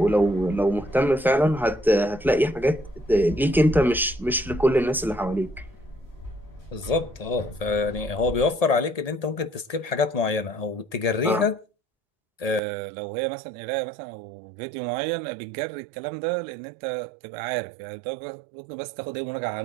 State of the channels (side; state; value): left; drops out; at 12.6 s